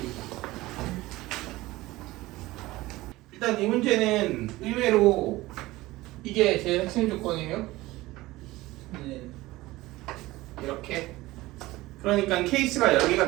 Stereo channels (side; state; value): left; quieter; 18.7 dB